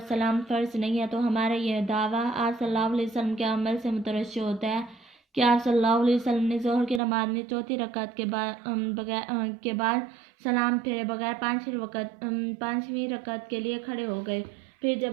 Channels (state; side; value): drops out; left; at 7.0 s